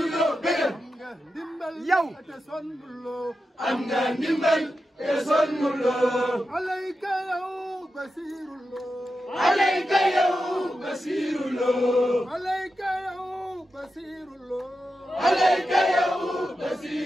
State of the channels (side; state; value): both; normal; correlation 0.90